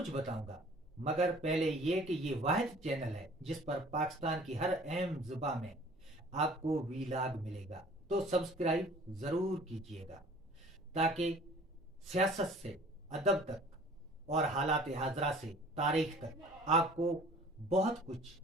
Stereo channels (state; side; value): normal; both; correlation 0.49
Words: बताऊंगा, मगर पहले ये कि ये वाहिद चैनल है जिस पर पाकिस्तान की हर अहम जुबा में आपको वीलाग मिलेगा। तो सब्सक्राइब ज़रूर कीजिएगा ताकि सियासत से अदब तक और हालात हाजरा से तारीख तक आपको बहुत कुछ